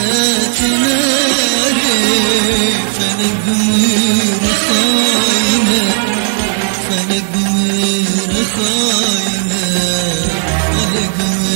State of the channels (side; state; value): left; silent; digital silence